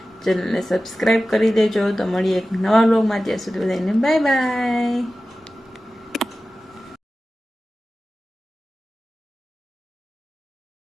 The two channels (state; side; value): normal; both; correlation 0.95